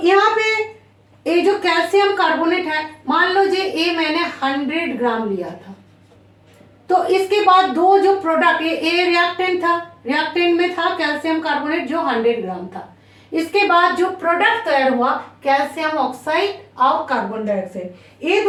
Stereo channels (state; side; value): identical; both; correlation 1.00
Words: यहाँ पे ये जो कैल्शियम कार्बोनेट है, मान लो ये मैंने 100 ग्राम लिया था, तो इसके बाद दो जो प्रोडक्ट, ये रिएक्टेंट था, रिएक्टेंट में था कैल्शियम कार्बोनेट जो 100 ग्राम था। इसके बाद जो प्रोडक्ट तैयार हुआ कैल्शियम ऑक्साइड और कार्बन डाइऑक्साइड, ये